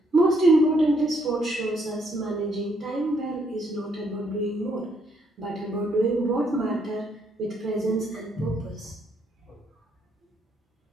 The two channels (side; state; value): both; normal; correlation 0.72